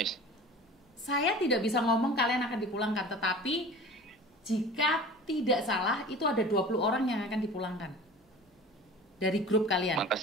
Saya tidak bisa ngomong kalian akan dipulangkan, tetapi jika tidak salah itu ada 20 orang yang akan dipulangkan dari grup kalian.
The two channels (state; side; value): normal; both; correlation 0.40